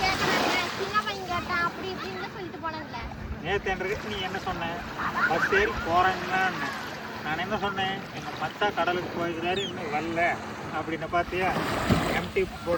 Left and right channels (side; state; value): both; identical; correlation 1.00